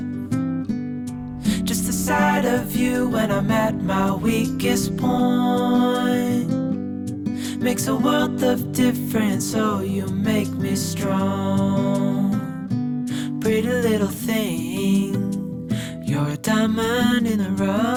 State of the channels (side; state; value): both; identical; correlation 1.00